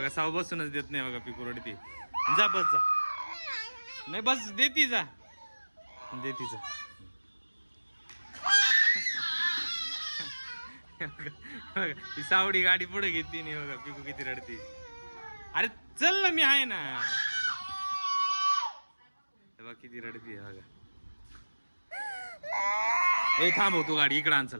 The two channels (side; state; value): both; inverted; correlation -1.00